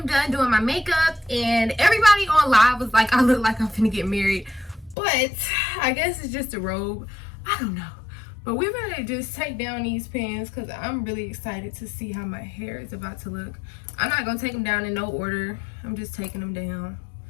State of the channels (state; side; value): drops out; right; at 5.0 s